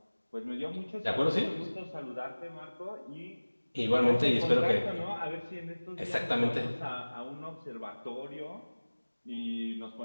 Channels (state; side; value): inverted; both; correlation -1.00